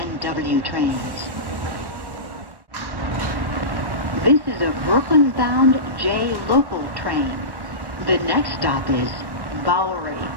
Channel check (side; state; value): left; late; 1.1 ms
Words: W trains. This is a Brooklyn-bound J local train. The next stop is Bowery.